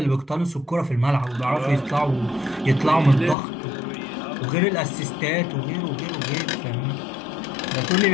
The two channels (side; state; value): right; drops out; at 3.4 s